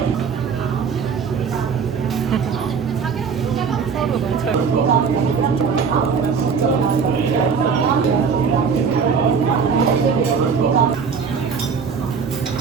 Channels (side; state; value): left; quieter; 6.0 dB